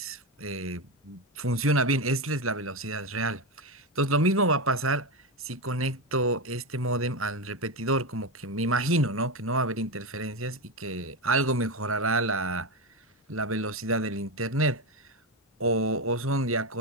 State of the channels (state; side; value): normal; both; correlation 0.13